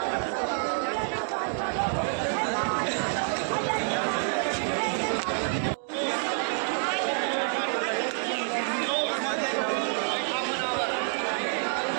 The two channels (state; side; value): silent; left; 59 dB below the other